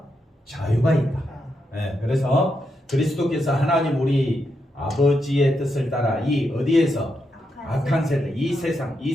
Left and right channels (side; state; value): both; normal; correlation 0.83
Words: 자유가 있다. 네, 그래서 그리스도께서 하나님 우리 아버지의 뜻을 따라 이 어디에서 악한 세대, 이